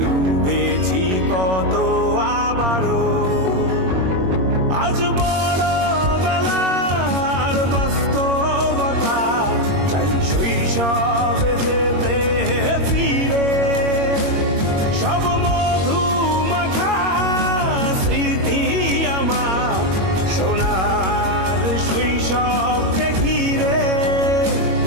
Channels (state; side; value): late; left; 21 ms